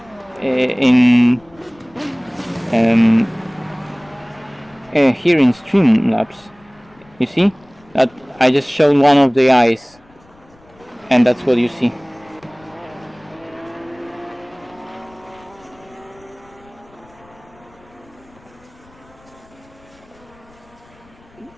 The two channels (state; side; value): noise; left; rumble, 29 dB below the sound